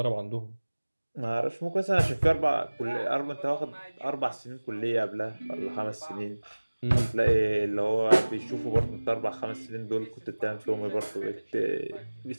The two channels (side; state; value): both; inverted; correlation -1.00